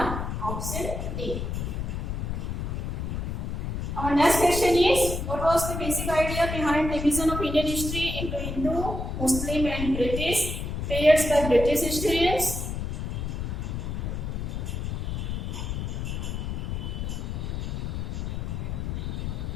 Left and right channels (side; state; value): left; noise; rumble, 3 dB below the sound